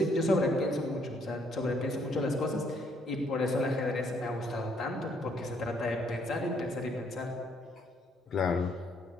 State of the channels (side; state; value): both; normal; correlation 0.68